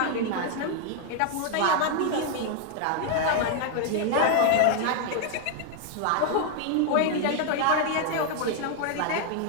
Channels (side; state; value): both; different; correlation 0.00